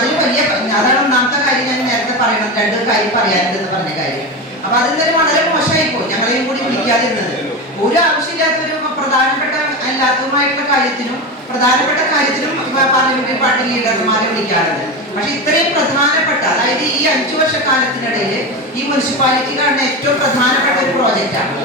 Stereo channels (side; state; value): both; normal; correlation 0.20